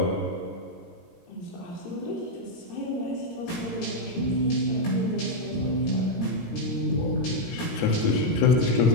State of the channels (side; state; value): right; late; 17 ms